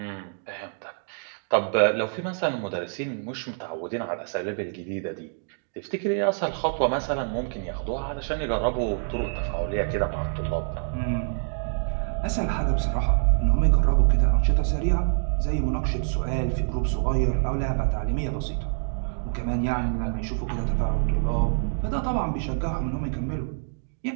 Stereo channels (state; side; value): silent; left; digital silence